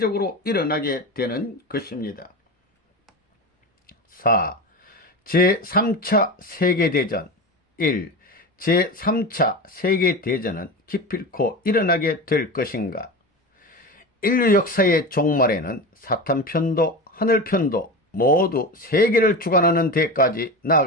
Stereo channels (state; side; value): normal; both; correlation 0.25